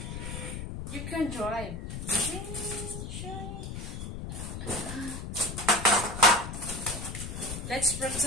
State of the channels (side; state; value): left; noise; rumble, 7 dB below the sound